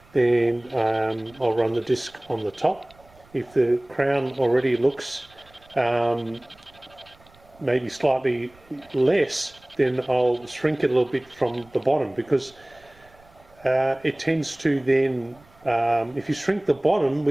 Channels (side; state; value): right; noise; rumble, 28 dB below the sound